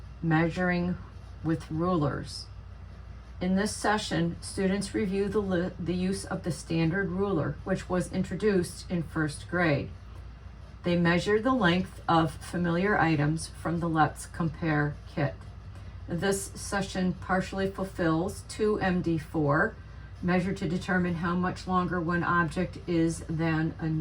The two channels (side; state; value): both; identical; correlation 1.00